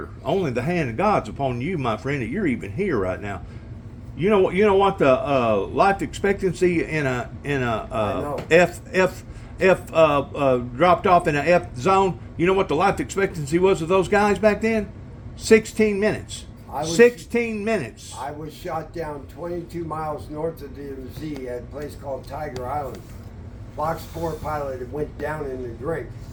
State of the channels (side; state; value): both; identical; correlation 1.00